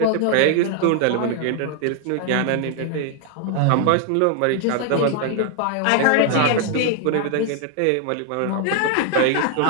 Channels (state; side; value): different; both; correlation 0.00